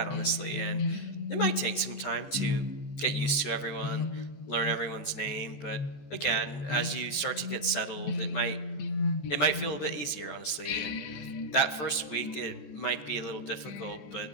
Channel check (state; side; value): late; right; 14 ms